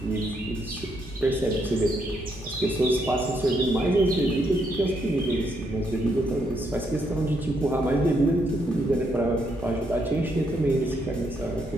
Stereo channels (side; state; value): both; normal; correlation 0.76